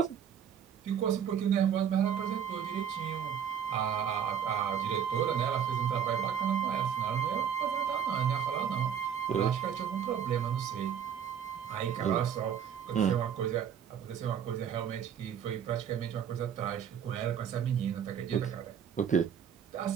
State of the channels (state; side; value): quieter; left; 8.3 dB